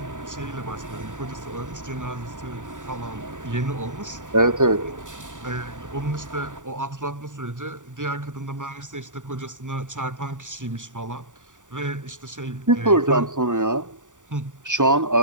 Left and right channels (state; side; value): late; left; 0.87 ms